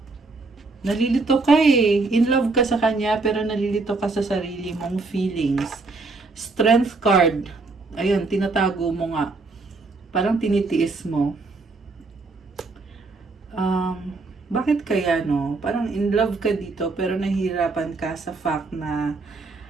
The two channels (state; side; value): quieter; left; 3.7 dB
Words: Nalilito ka eh. In love ka sa kanya, pero nalilito ka sa sarili mong feelings. Strength card. Ayun, tinatago mo nga. Parang tinitiis mo. Bakit kaya no? Parang in love ka dito, pero nahihirapan ka sa fact na